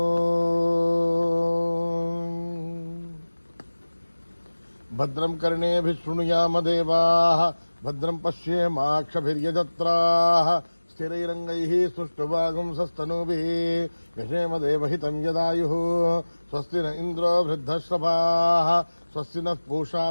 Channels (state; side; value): inverted; both; correlation -1.00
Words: భద్రం కర్ణేభిః శృణుయామ దేవాః భద్రం పశ్యేమాక్షభిర్యజత్రాః స్థిరైరంగైః సుష్ఠువాగుంసస్తనూభిः యశేమ దేవహితం యదాయుః. స్వస్తి న ఇంద్రో వృద్ధశ్రవాः స్వస్తి నః పూషా